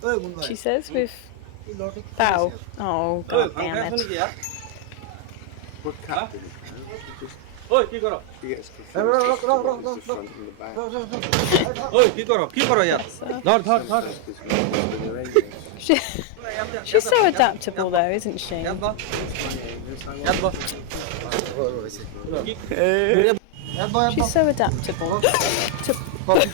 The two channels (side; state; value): both; different; correlation 0.00